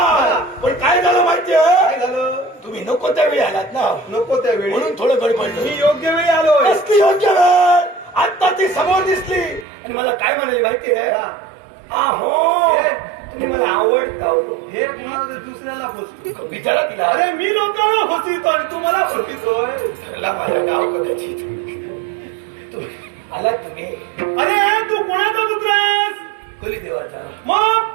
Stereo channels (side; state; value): left; drops out; at 9.7 s